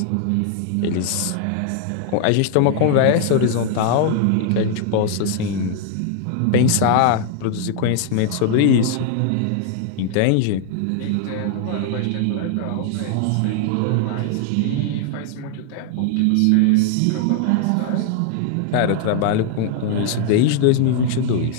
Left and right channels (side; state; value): both; different; correlation 0.00